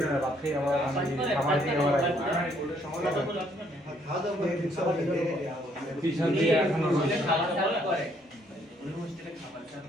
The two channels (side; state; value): both; normal; correlation 0.67